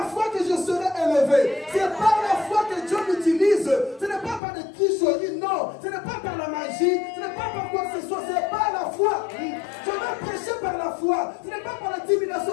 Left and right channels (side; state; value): right; drops out; at 4.4 s